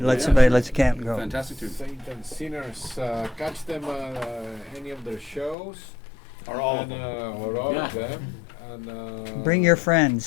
let's camp go. Fantastic tune. Saints and Sinners. Catch them any of their shows. Or all of and, them. or all of Yeah. them. And Bring your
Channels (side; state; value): right; drops out; at 5.6 s